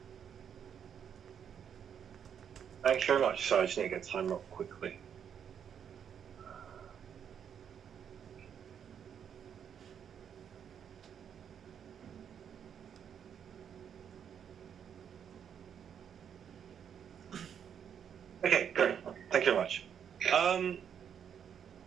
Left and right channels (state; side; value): quieter; left; 8.2 dB